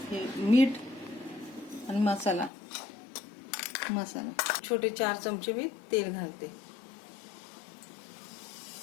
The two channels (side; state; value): right; drops out; at 2.5 s